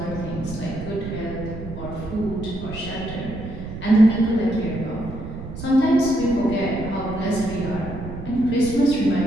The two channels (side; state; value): right; noise; rumble, 10 dB below the sound